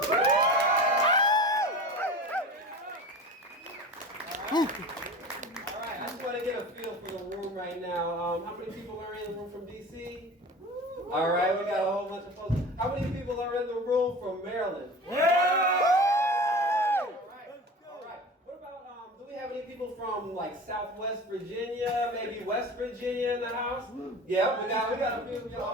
Alright, I just want to get a feel for the room right now. How many people are in the room from DC? Alright, we got a whole bunch of folks. How many people are in the room from Maryland? Alright. What about, do we have any people from like Southwest Virginia, maybe West Virginia in the house? Yeah, we got a few.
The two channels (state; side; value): normal; both; correlation 0.36